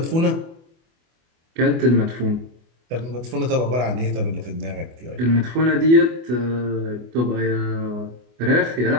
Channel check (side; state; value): left; late; 24 ms